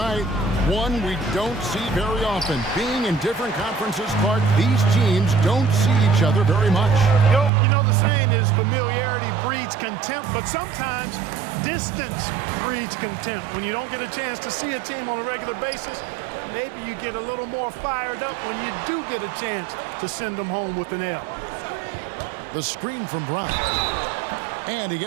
one we don't see very often. Being in different conferences, Clark, these teams don't see each other very much. You know the saying is familiarity breeds contempt, but sometimes distance breeds contempt. When you don't get a chance to see a team on a regular basis, maybe you get a little more fired up when you do get a chance to send them home with an L. The screen from Brown. And he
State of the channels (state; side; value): drops out; left; at 7.5 s